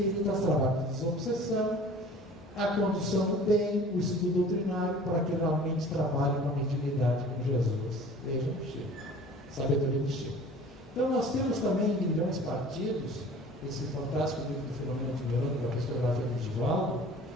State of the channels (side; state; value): both; normal; correlation 0.45